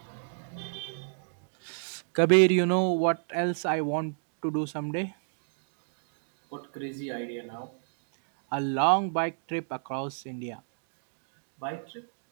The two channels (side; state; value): left; silent; digital silence